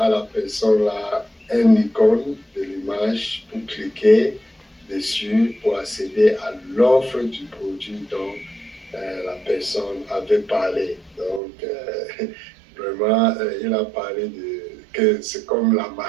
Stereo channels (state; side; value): drops out; left; at 11.4 s